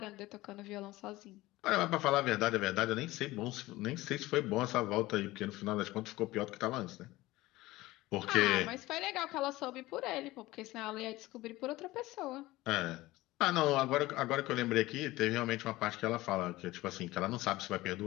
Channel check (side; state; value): right; quieter; 18.4 dB